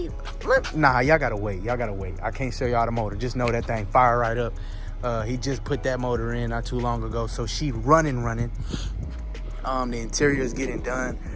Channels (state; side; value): identical; both; correlation 1.00